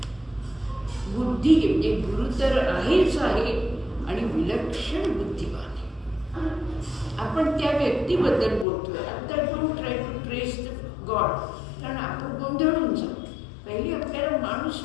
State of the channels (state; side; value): drops out; right; at 8.7 s